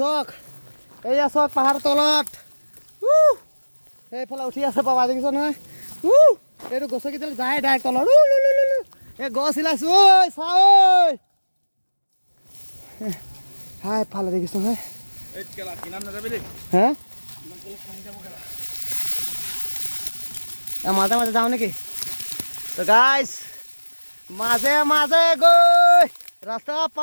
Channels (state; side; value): inverted; both; correlation -1.00